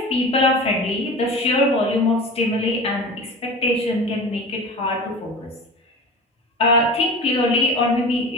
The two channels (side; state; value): both; normal; correlation 0.34